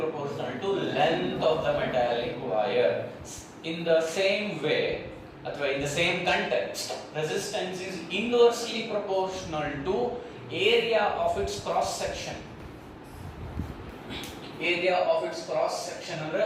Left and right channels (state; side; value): identical; both; correlation 1.00